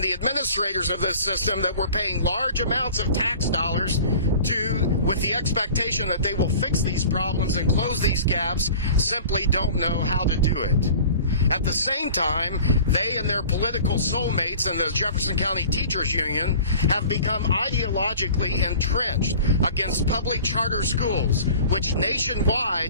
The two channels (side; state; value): both; inverted; correlation -0.43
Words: the administrators of this system that we're paying large amounts of tax dollars to, with the expectation that they will fix these problems and close these gaps, simply don't know how to do it. At the same time, they and their political soulmates in the Jefferson County Teachers Union have become ideologically entrenched against public charter schools, which